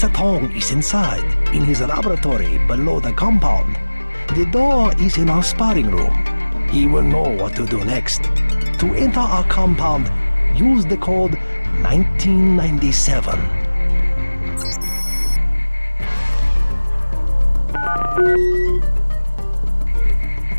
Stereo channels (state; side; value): inverted; both; correlation -1.00